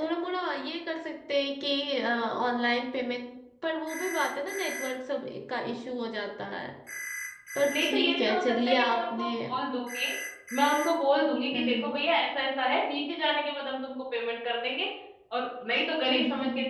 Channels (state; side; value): identical; both; correlation 1.00